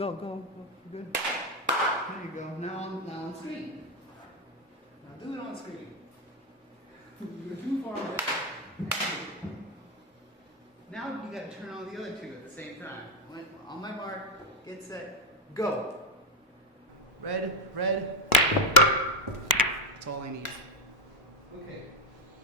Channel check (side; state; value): both; normal; correlation 0.08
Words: Good. There you go. Now on screen. Now do it on screen. You're too far away. Now you gotta turn on the other two at the same time. On my mark, get set, go. Red. That's all I need. Okay.